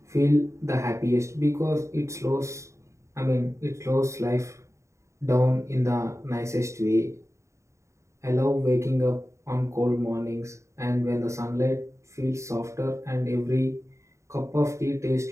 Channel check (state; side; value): late; left; 0.14 ms